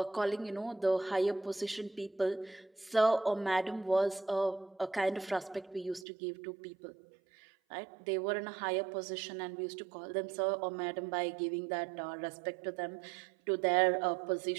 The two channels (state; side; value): drops out; left; at 6.1 s